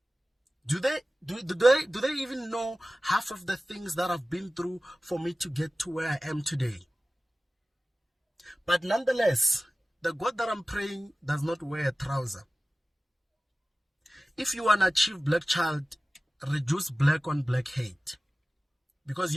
Do they even know half of the things that I've been through for me to get to where I am today? But nonetheless, the God that I'm praying does not wear a trouser. If you want to achieve black child, reduce black on black hate, because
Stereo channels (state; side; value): normal; both; correlation 0.96